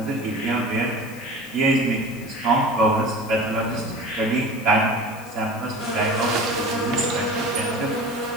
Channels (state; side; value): noise; left; hiss, 20 dB below the sound